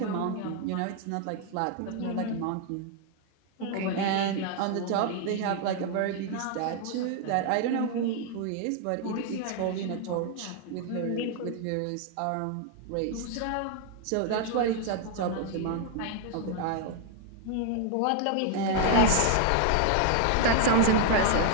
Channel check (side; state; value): both; different; correlation 0.00